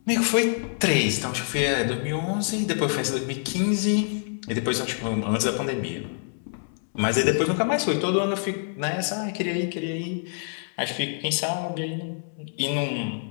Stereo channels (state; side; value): silent; right; 61 dB below the other